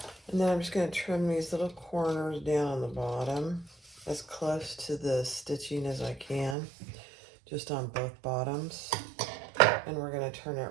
And then I'm just going to trim these little corners down on the bottom as close to the stitching as I can, just on both bottoms. And we're going to turn it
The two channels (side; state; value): left; drops out; at 6.6 s